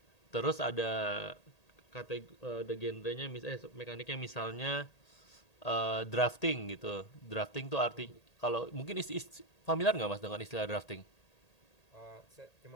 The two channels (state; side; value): late; right; 1.8 ms